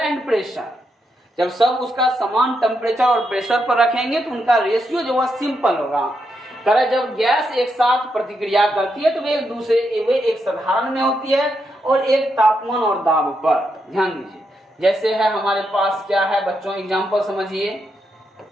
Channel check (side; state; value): both; normal; correlation 0.82